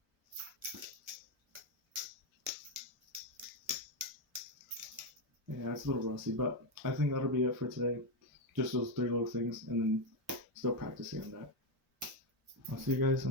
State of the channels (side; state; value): both; normal; correlation 0.06